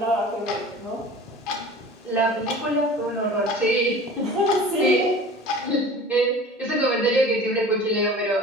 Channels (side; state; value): both; normal; correlation 0.40